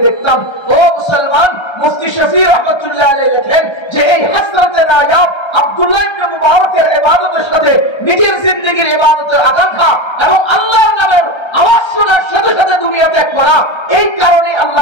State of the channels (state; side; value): late; right; 1.3 ms